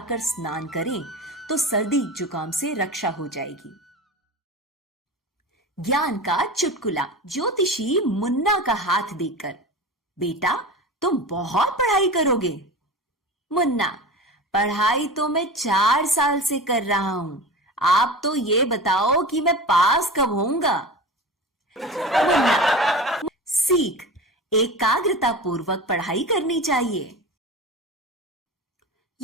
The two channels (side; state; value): both; normal; correlation 0.31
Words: स्नान करें तो सर्दी जुकाम से रक्षा हो जाएगी। ज्ञान का चुटकुला। ज्योतिषी मुन्ना का हाथ देखकर, बेटा तुम बहुत पढ़ाई करोगे। मुन्ना, पढ़ाई तो मैं 4 साल से कर रहा हूं, आप तो ये बताओ कि मैं पास कब होऊंगा। मुन्ना, सीख, एकाग्रता पूर्वक पढ़ाई करनी चाहिए।